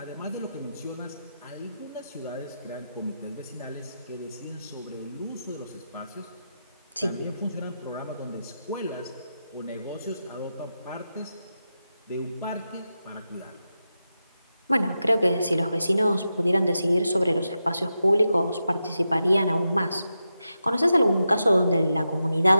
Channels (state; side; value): inverted; both; correlation -0.88